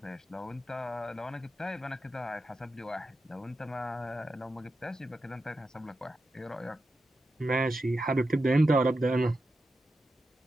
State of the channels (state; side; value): normal; both; correlation 0.89